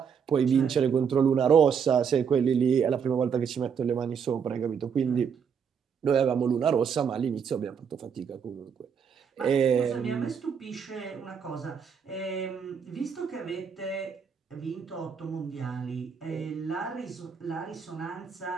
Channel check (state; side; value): quieter; left; 6.9 dB